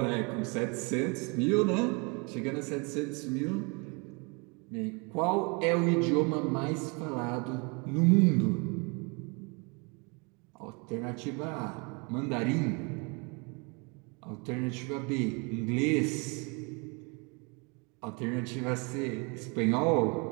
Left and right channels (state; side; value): quieter; left; 31.3 dB